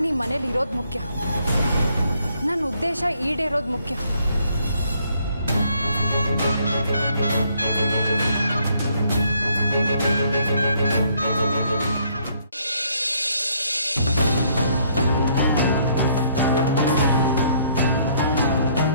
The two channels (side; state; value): both; inverted; correlation -0.67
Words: ಈ ಮನೇಲಿ ಇರೋದು ಮುಖ್ಯ. ನನ್ನ ಉದ್ದೇಶ ಈಡೇರೋದು ಮುಖ್ಯ.